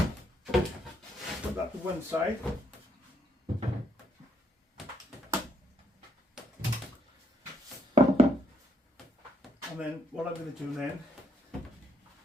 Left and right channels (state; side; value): normal; both; correlation 0.73